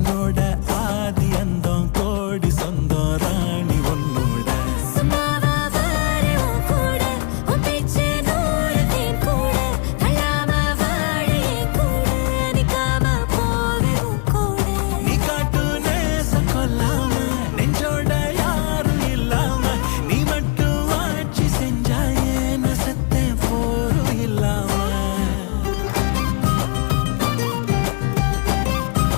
ஆதி அந்தம் கோடி சொந்தம் ராணி ஒன்னும்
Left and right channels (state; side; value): quieter; right; 34.8 dB